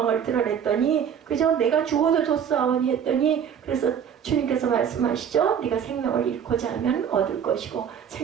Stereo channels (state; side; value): quieter; left; 8.2 dB